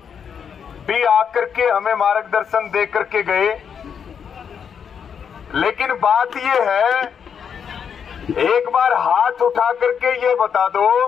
भी आकर के हमें मार्गदर्शन दे करके गए। लेकिन बात यह है, एक बार हाथ उठा करके ये बता दो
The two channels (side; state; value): right; quieter; 7.3 dB